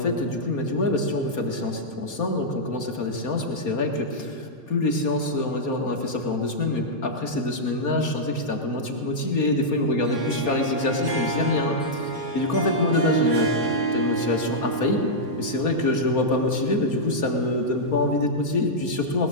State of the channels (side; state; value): right; late; 4.3 ms